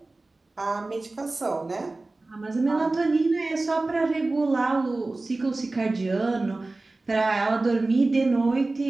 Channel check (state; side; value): quieter; left; 3.2 dB